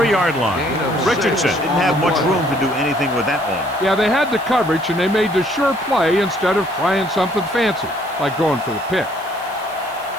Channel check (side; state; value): right; noise; hiss, 22 dB below the sound